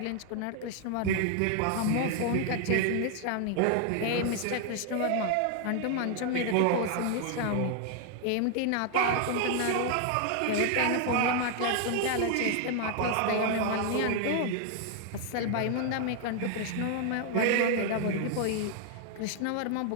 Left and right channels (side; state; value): both; different; correlation 0.00